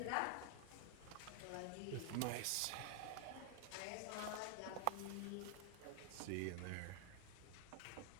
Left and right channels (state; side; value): different; both; correlation 0.00